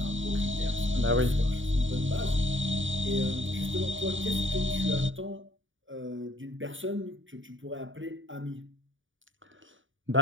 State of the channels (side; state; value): left; late; 0.57 ms